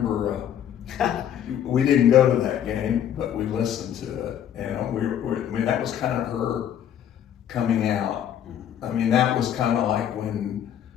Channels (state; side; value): quieter; right; 9.9 dB